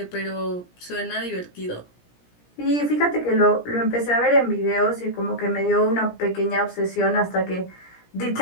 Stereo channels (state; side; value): late; right; 17 ms